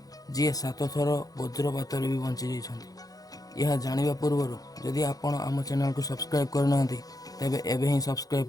जी 7 थर वज्रपात भी बंची जाइछन्ति यह जानिबा पूर्व जदि आपण आम चैनल को सब्सक्राइब करना तेबे एबे ही सब्सक्राइब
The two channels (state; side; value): late; right; 0.18 ms